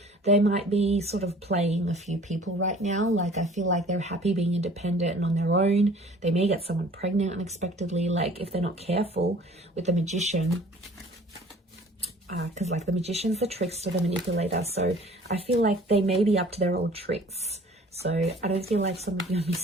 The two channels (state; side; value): normal; both; correlation 0.50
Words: they might be sort of playing a few people right now. Like, I feel like they're happy being independent and on their own. They may get someone pregnant unexpectedly, like if they're not careful with the Magician. because like the magician's the trickster, the manipulator. So I feel like they may be up to their old tricks. So I don't feel like some of you are